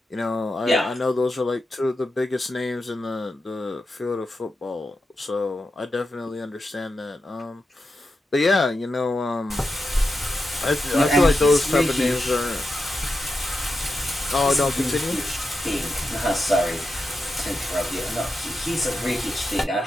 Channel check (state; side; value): normal; both; correlation 0.89